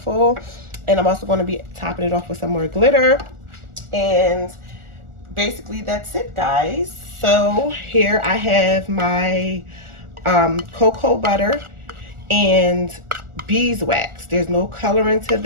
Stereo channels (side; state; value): left; late; 1.4 ms